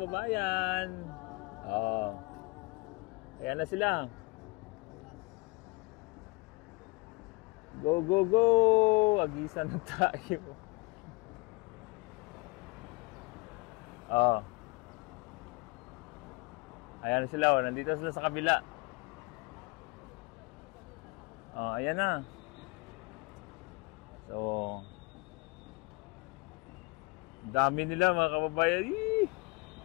Oh. Ayan na sila. Go, go, go. Agisa na tayo. Oh. Ayan na sila. Oh. Nandito sila sa kabila. Oh, ayan na. So, dami nila mga kababayan.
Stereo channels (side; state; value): right; quieter; 27.0 dB